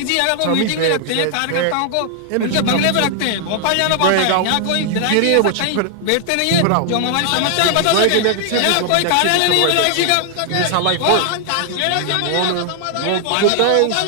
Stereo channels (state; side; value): different; both; correlation 0.00